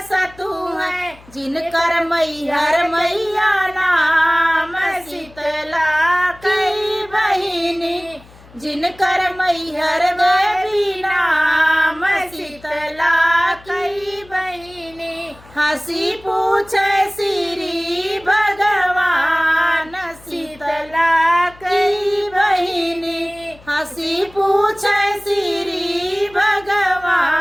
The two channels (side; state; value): left; noise; hum, 24 dB below the sound